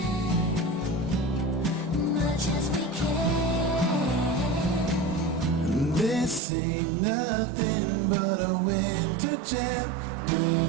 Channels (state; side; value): drops out; left; at 6.4 s